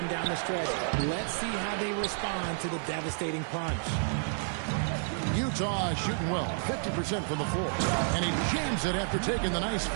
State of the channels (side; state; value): left; silent; digital silence